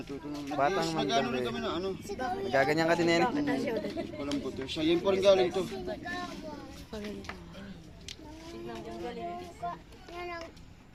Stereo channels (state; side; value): identical; both; correlation 1.00